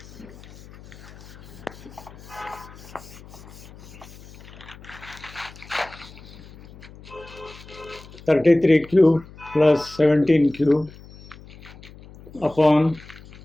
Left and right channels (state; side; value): noise; left; hum, 19 dB below the sound